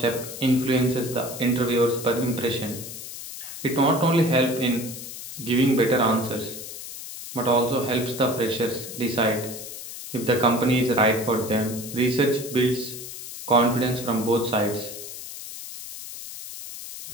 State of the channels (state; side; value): noise; left; hiss, 11 dB below the sound